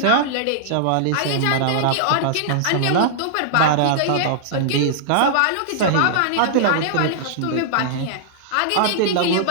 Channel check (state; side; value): different; both; correlation -0.01